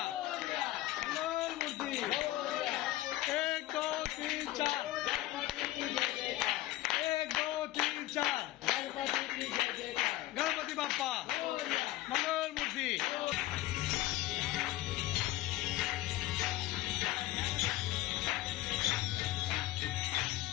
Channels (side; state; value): right; quieter; 16.4 dB